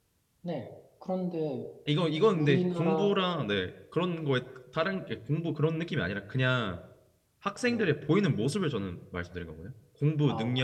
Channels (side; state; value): both; identical; correlation 1.00